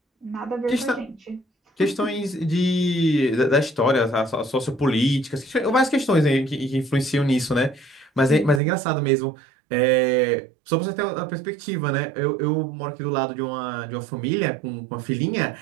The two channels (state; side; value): drops out; left; at 8.6 s